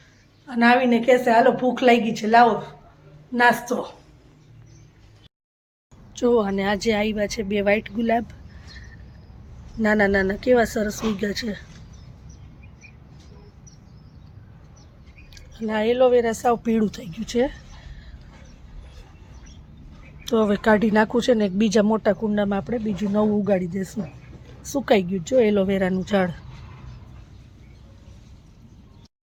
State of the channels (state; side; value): identical; both; correlation 1.00